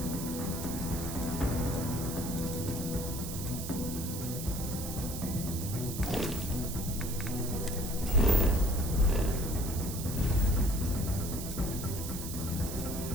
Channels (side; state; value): right; noise; hiss, 8 dB below the sound